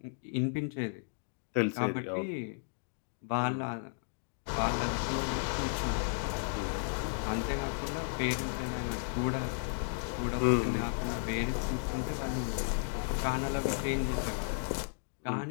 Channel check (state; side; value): silent; right; digital silence